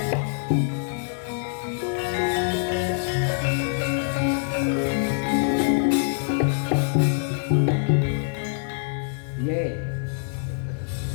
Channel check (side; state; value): right; silent; 62 dB below the other